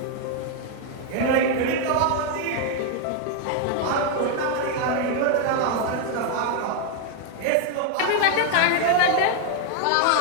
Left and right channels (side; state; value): both; different; correlation 0.00